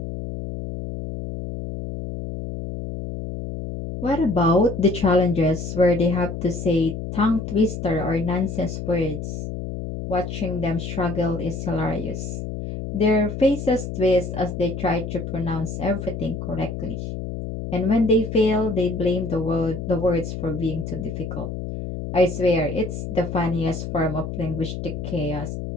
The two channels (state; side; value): noise; left; hum, 6 dB below the sound